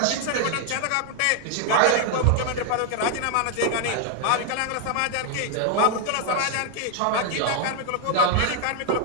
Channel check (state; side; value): different; both; correlation 0.01